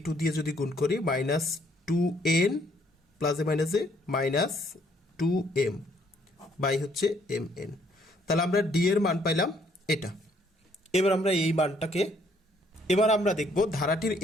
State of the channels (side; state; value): both; normal; correlation 0.66